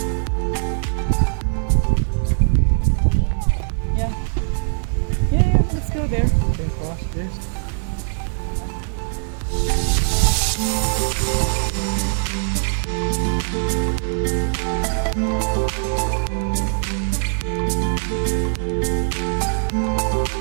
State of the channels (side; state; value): left; silent; digital silence